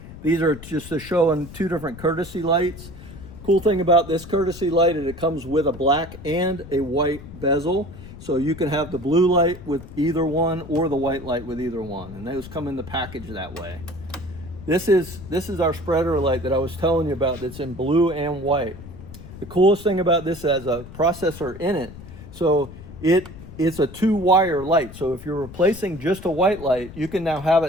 These are just to show in 2 different courtesy lights. Cool thing about this courtesy light is it comes with a black and a white bezel. So you can have the blue light with either one or the white light with either one. And those come in the package that way. This is our spreader light that I was telling you about that's in blue and white. The coolest thing about this has a processor in it. So it's a 2-wire light. So if you're replacing just a white light, you can now have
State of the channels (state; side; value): noise; left; rumble, 15 dB below the sound